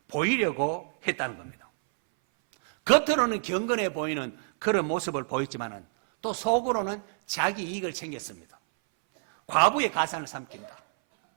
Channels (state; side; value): silent; left; 58 dB below the other